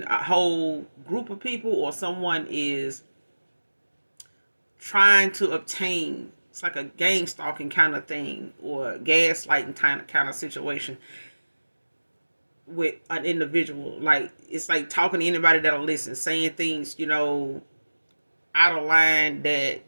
a whole group of people, or someone is trying to obtain, it's like a gang stalking kind of thing, or gaslighting kind of situation with an individual. Like, it's like talking to anybody that'll listen, saying things, out of line that,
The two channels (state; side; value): inverted; both; correlation -1.00